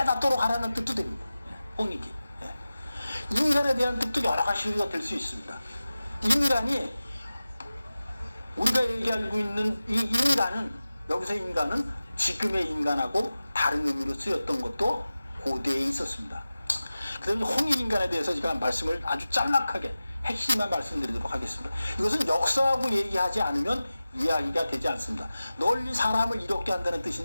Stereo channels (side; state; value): both; inverted; correlation -0.95